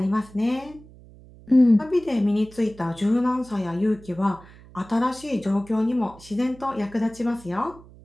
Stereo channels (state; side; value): noise; right; hum, 22 dB below the sound